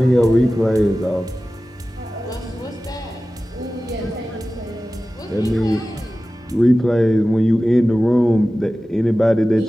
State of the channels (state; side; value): normal; both; correlation 0.96